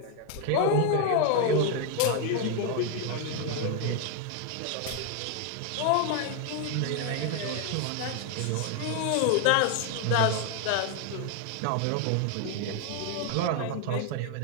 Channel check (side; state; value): both; different; correlation 0.01